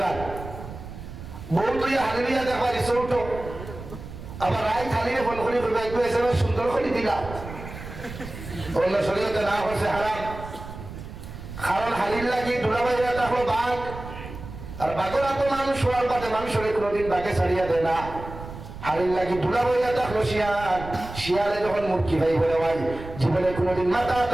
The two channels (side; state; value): right; noise; rumble, 12 dB below the sound